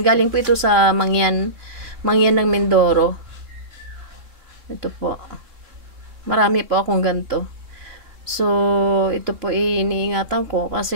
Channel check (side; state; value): left; late; 3.0 ms